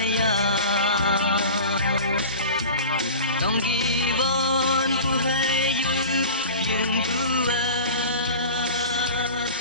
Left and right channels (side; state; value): both; inverted; correlation -0.34